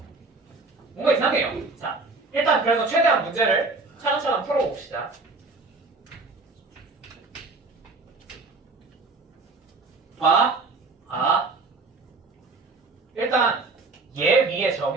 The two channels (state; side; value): quieter; left; 3.6 dB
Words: 뭔가 이상해요. 자, 일단 그래서 최대한 문제를 차근차근 풀어봅시다. 일단 얘 위에